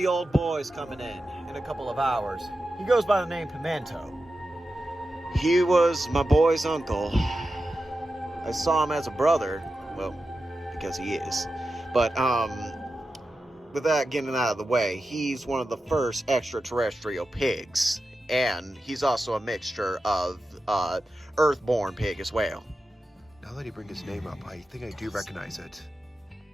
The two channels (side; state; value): both; normal; correlation 0.91